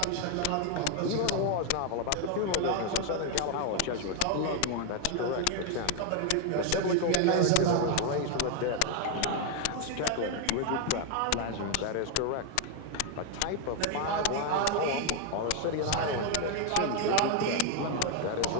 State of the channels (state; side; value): different; both; correlation 0.01